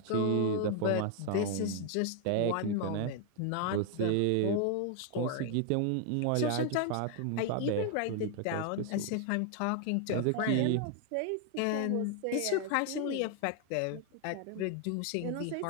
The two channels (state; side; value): different; both; correlation 0.00